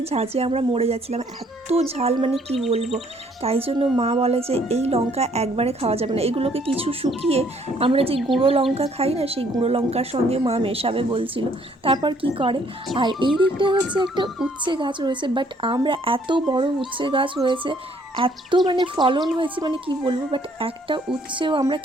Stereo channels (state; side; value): normal; both; correlation 0.64